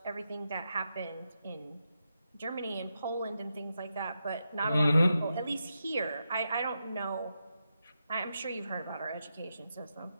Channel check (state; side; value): inverted; both; correlation -0.86